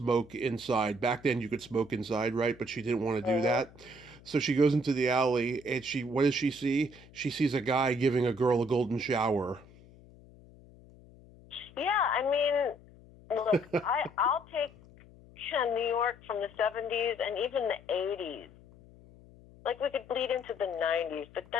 inside. Back then you could smoke inside, right? But she didn't want to do that. So she goes into the alley, and what does she see? She sees a guy giving a girl a golden shower. Yeah, I mean, look, I'll take New York from the 70s and even the 80s. Like, we could bleed into the 90s, but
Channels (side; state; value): left; noise; hum, 23 dB below the sound